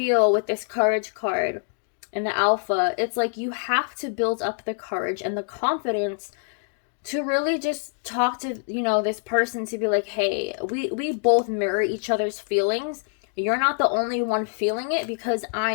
with this courage card and the Alpha, it's like you have to build up the courage and the confidence to really just talk to, you know, this person, to be like, hey, we both mirror each other's feelings. You're not the only one feeling it, because I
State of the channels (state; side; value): silent; right; digital silence